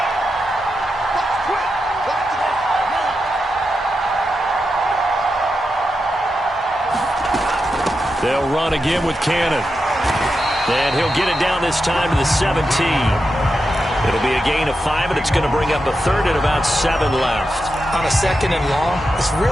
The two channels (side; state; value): both; normal; correlation 0.88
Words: They'll run again with Cannon. And he'll get it down this time to the 17. It'll be a gain of 5, and it's going to bring up a 3rd and about 7 left. On a 2nd and long, it's